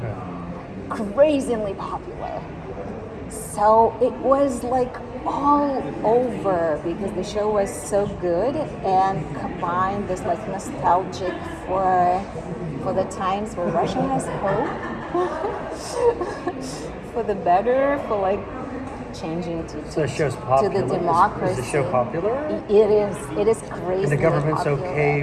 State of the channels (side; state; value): both; identical; correlation 1.00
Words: Crazily popular. So it was like all over because the show was so good and combined this like nostalgic for the times where Russia has hope for the better, for like changing to So the show's popular. to the democracy. Is the show popular? It is crazy. And the government's popular.